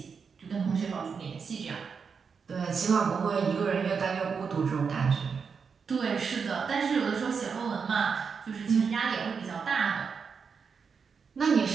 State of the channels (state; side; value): quieter; left; 5.8 dB